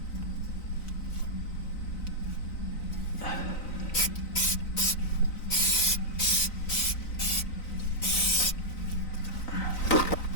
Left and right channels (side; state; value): right; late; 3.9 ms